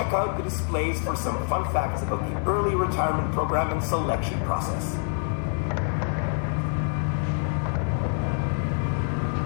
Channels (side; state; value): right; silent; 55 dB below the other